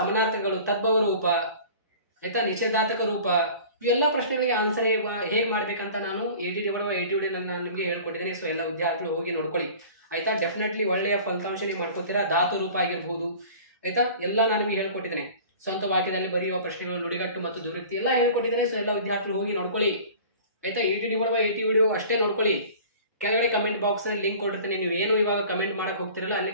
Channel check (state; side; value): inverted; both; correlation -0.43